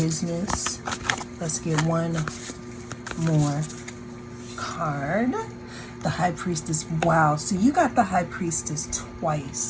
Let's get one more card. The High Priestess. Wow, so you got the High Priestess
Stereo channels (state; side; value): identical; both; correlation 1.00